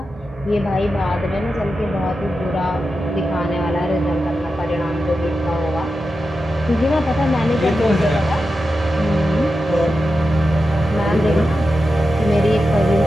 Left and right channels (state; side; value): normal; both; correlation 0.90